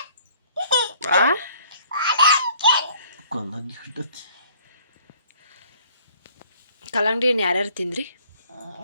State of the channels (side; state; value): both; inverted; correlation -0.58